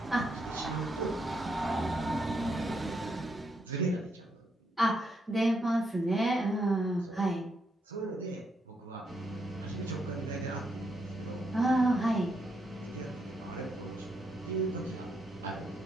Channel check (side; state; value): both; normal; correlation 0.78